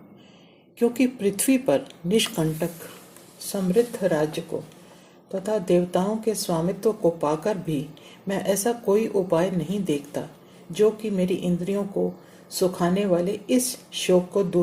क्योंकि पृथ्वी पर निष्कंटक समृद्ध राज्य को तथा देवताओं के स्वामित्व को पाकर भी मैं ऐसा कोई उपाय नहीं देखता जो कि मेरी इंद्रियों को सुखाने वाले इस शोक को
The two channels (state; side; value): identical; both; correlation 1.00